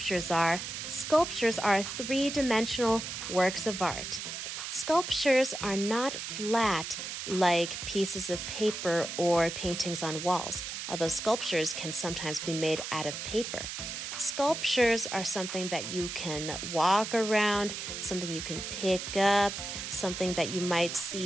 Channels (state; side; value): noise; right; hiss, 6 dB below the sound